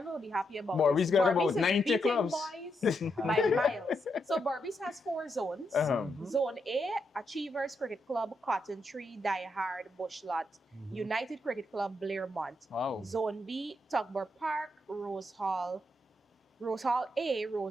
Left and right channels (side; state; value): both; normal; correlation 0.81